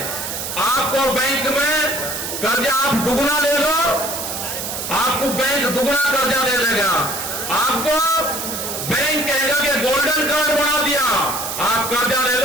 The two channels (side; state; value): right; noise; hiss, 5 dB below the sound